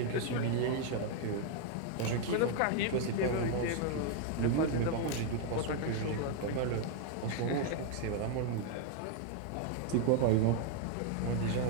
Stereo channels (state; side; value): different; both; correlation 0.00